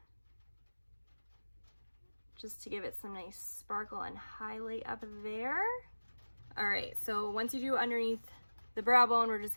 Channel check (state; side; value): inverted; both; correlation -1.00